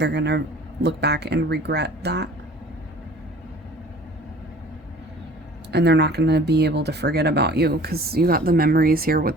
gonna look back and regret that. And they're not gonna be able to forget about you because you got the memories here with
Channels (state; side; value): normal; both; correlation 0.48